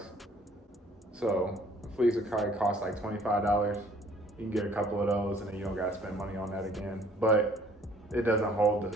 So a fleece would probably cost like $25. You can get a couple of those and then you don't gotta spend money on that again. But it doesn't hold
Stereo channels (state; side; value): normal; both; correlation 0.57